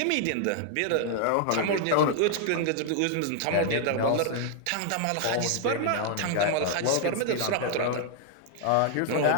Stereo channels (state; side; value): different; both; correlation 0.00